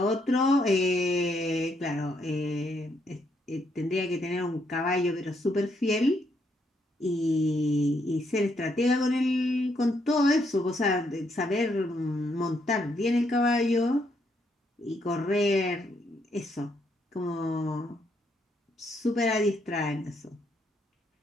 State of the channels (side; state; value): both; normal; correlation 0.75